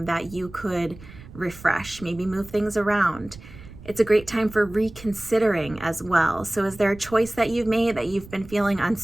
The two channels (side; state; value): right; noise; rumble, 18 dB below the sound